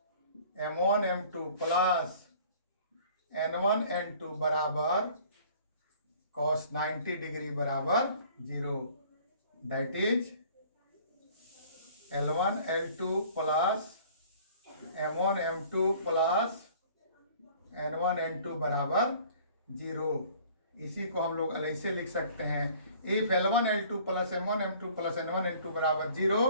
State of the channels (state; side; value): inverted; both; correlation -0.52